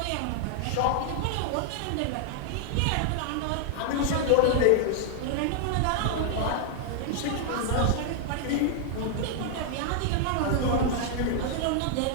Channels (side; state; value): both; different; correlation 0.00